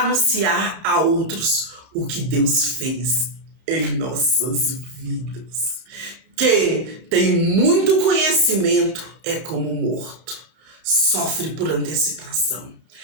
a outros o que Deus fez em nossas vidas. Quem tem muito conhecimento é como morto. Sofre por antecipação.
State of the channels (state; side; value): late; left; 31 ms